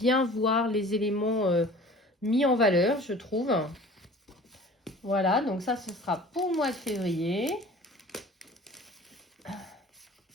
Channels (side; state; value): both; normal; correlation 0.44